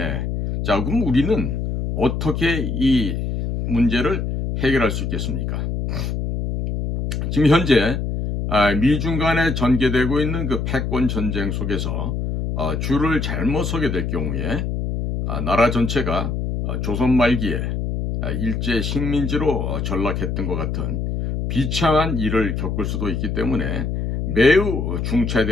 자, 그럼 우리는 어떻게 이 문제를 해결할 수 있겠습니까? 지금 현재 미중 간에 전개되고 있는 그 패권 전쟁 속에서 줄을 잘못 서게 될 경우에 나라 전체가 조선 말기에 일제 식민지로 전락했던 것 같은 비참한 일을 겪을 수도 있기 때문에 매우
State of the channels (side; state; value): left; noise; hum, 2 dB below the sound